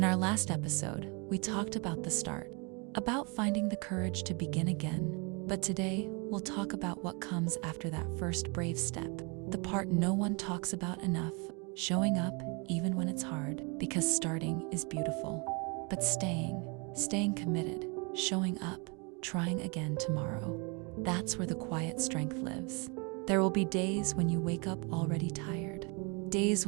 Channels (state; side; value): quieter; left; 31.7 dB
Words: our last episode, we talked about the start, about finding the courage to begin again. But today, we'll talk about what comes after that first brave step, the part no one talks about enough, showing up even when it's hard, because starting is beautiful. But staying committed, showing up, trying again tomorrow, that's where the quiet strength lives. There will be days when you wake up already tired, days